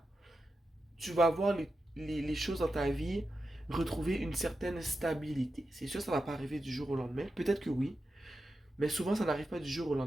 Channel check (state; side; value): normal; both; correlation 0.90